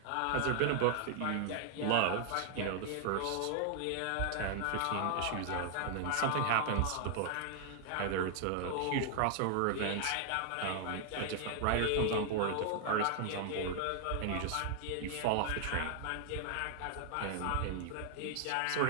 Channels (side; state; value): both; different; correlation 0.00